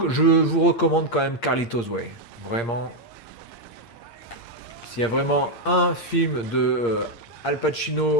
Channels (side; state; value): right; late; 8.6 ms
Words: recommande quand même Carlitos Way. Vraiment, s'il y a vraiment un film de Al